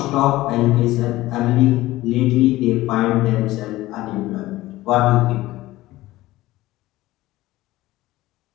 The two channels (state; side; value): quieter; right; 17.4 dB